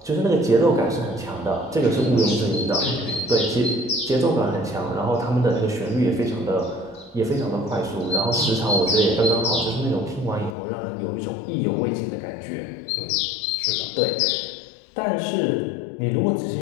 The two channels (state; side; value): drops out; right; at 10.6 s